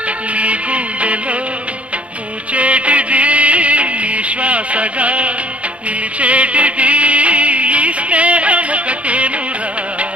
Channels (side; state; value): left; late; 0.063 ms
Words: నీ గుండెలో పూచేటిది నీ శ్వాసగా నిలిచేటిది ఈ స్నేహం ఒకటేనురా